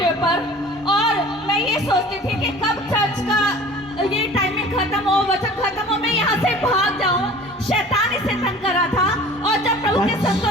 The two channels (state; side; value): normal; both; correlation 0.44